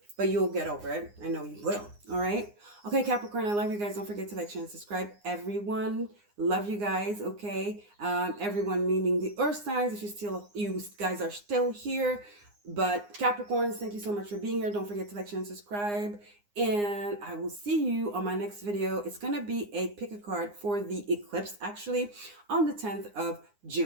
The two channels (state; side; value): late; left; 9.7 ms